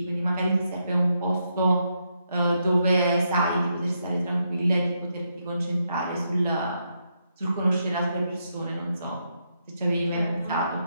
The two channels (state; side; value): inverted; both; correlation -0.80